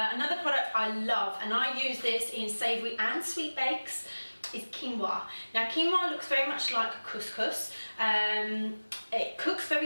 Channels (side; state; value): both; inverted; correlation -1.00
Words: product I love, and I use this in savoury and sweet bakes, is quinoa. Now quinoa looks very much like couscous. It cooks